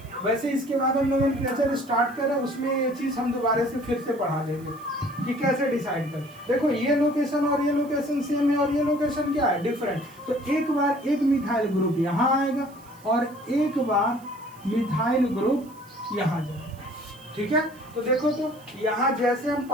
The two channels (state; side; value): noise; right; hiss, 26 dB below the sound